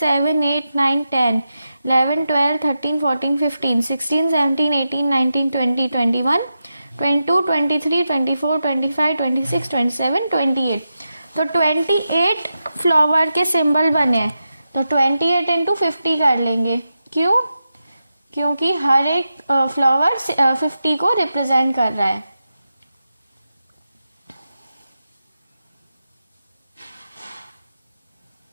8, 9, 10, 11, 12, 13, 14, 15, 16, 17, 18, 19, 20, 21, 22, 23, 24, 25, 26, 27, 28। तो 28 फ्लावर के सिंबल बने हैं तो 28 इंटू 50 कर लेंगे। क्यों? क्योंकि हर एक फ्लावर 50 को रिप्रेजेंट कर रहा है।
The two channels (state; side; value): inverted; both; correlation -0.89